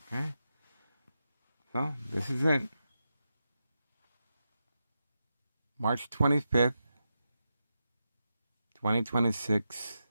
Okay. So, this is it. March 25th, 2026,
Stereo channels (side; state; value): both; inverted; correlation -0.89